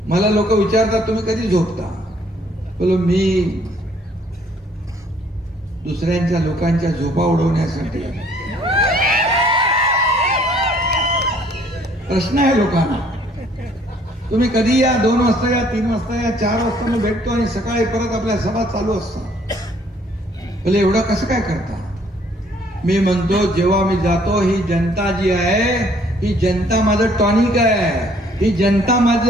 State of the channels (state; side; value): normal; both; correlation 0.62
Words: मला लोक विचारतात तुम्ही कधी झोपता? बोलो मी दुसऱ्यांच्या लोकांच्या झोपा उडवण्यासाठी. प्रश्न आहे लोकांना, तुम्ही कधी या, 2 वाजता या, 3 वाजता या, 4 वाजता मी भेटतो आणि सकाळी परत आपल्या सभा चालू असतात. बोले एवढं कसं काय करता? मी म्हणतो जेव्हा मी जातो, ही जनता जी आहे, ही जनता माझं टॉनिक आहे, ही जनता